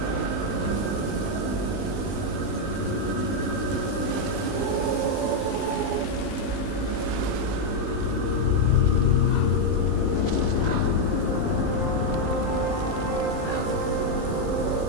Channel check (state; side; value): late; right; 19 ms